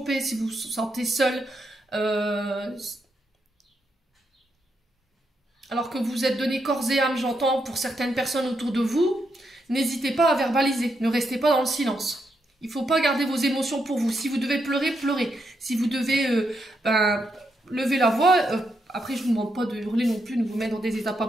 si vous vous sentez seul, alors que vous êtes donné corps et âme, j'entends, pour certaines personnes autour de vous, n'hésitez pas à verbaliser, ne restez pas dans le silence. Il ne faut pas garder vos émotions pour vous. Si vous devez pleurer, pleurez. Si vous devez lever la voix, après je ne vous demande pas de hurler non plus, de vous mettre dans des états pas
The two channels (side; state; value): both; normal; correlation 0.81